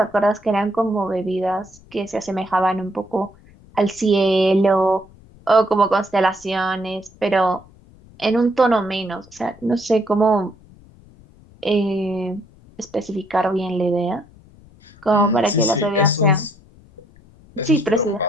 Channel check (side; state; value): left; noise; rumble, 25 dB below the sound